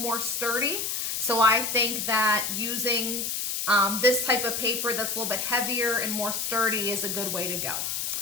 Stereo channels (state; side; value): noise; left; hiss, 2 dB below the sound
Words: sturdy. So I think that using this type of paper that's a little bit heavier and more sturdy is a good way to go.